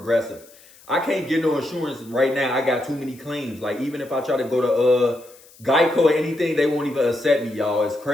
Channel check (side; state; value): left; noise; hiss, 25 dB below the sound